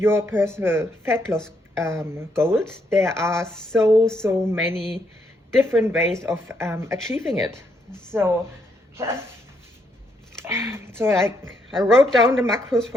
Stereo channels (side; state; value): both; normal; correlation 0.75